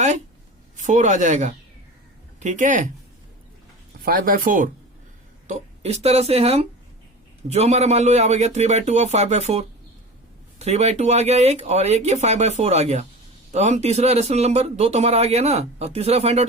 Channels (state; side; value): normal; both; correlation 0.33